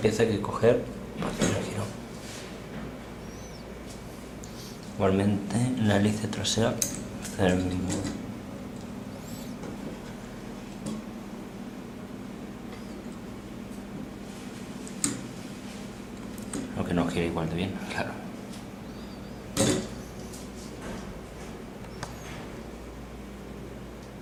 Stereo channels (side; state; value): both; identical; correlation 1.00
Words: pieza que hay que coger para hacer el girón. Igualmente en la hélice trasera hacer el mismo. Aunque no gira igual de bien, claro.